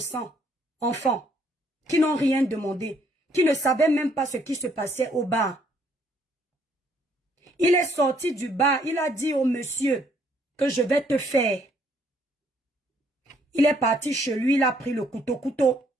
enfants qui n'ont rien demandé, qui ne savaient même pas ce qui se passait au bar. Il est sorti du bar, il a dit au monsieur que je vais te faire. Il est parti chez lui, il a pris le couteau.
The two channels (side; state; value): both; normal; correlation 0.67